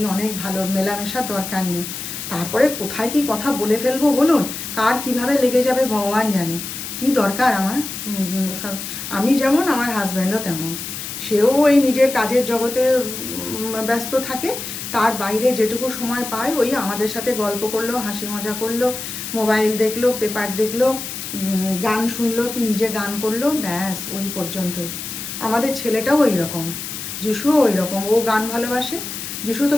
অনেক ভালো, মেলামেশার দরকার নেই। তারপরে কোথায় কি কথা বলে ফেলবো বলুন, কার কিভাবে লেগে যাবে ভগবান জানে। কি দরকার আমার ওসব। আমি যেমন, আমার হাজব্যান্ডও তেমন। সেও ওই নিজের কাজের জগতে ব্যস্ত থাকে, তার বাইরে যেটুকু সময় পায় ওই আমাদের সাথে গল্প করলো, হাসি মজা করলো, মোবাইল দেখলো, পেপার দেখলো, গান শুনলো কি নিজে গান করলো, ব্যাস ওই পর্যন্তই। আমাদের ছেলেটাও ওই রকম, যিশুও ওই রকম, ও গান ভালোবাসে। যিশু তো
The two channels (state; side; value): noise; left; hiss, 7 dB below the sound